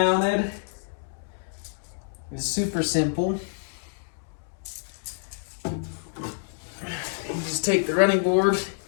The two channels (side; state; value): right; silent; digital silence